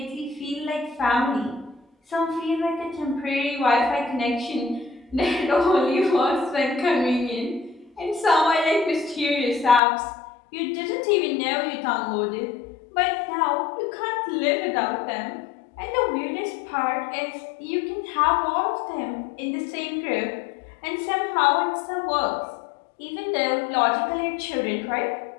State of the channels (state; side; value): drops out; right; at 9.8 s